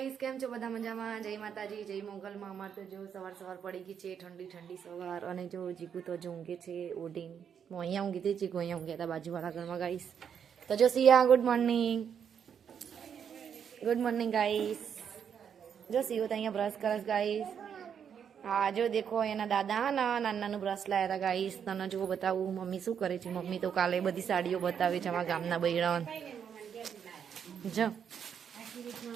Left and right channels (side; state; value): left; quieter; 7.8 dB